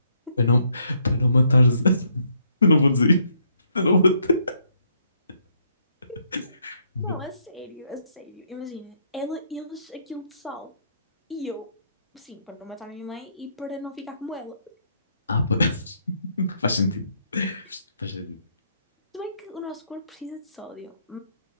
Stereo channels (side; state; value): both; inverted; correlation -0.70